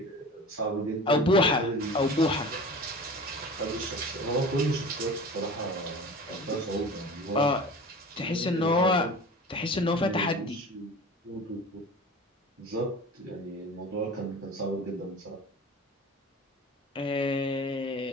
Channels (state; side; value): normal; both; correlation 0.37